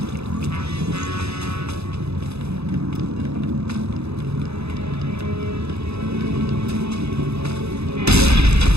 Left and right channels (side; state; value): left; late; 0.79 ms